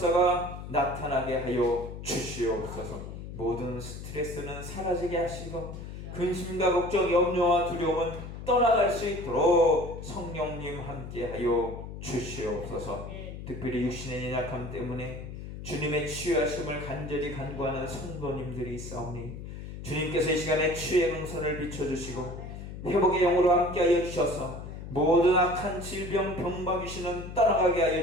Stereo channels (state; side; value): noise; left; hum, 10 dB below the sound